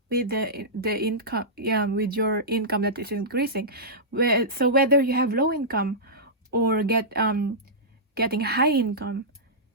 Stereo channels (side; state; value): both; normal; correlation -0.15